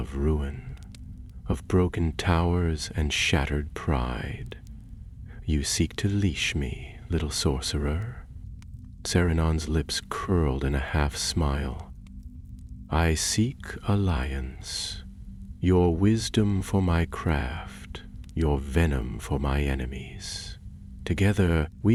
ruin, of broken towers and shattered pride. You seek to leash me, little sorcerer. Saruman's lips curled in a half-smile. I seek alliance, your wisdom for my craft, your venom for my enemies. Together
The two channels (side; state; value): both; identical; correlation 1.00